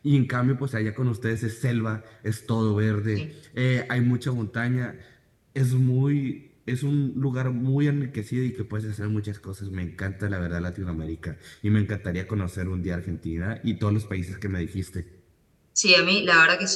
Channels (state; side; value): identical; both; correlation 1.00